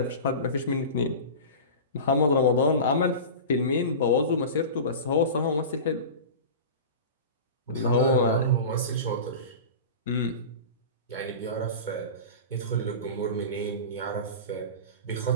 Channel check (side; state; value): both; inverted; correlation -0.30